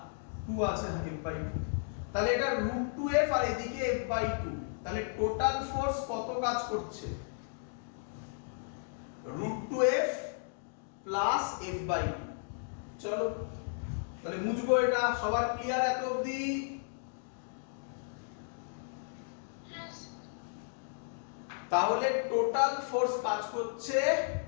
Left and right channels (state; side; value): silent; right; digital silence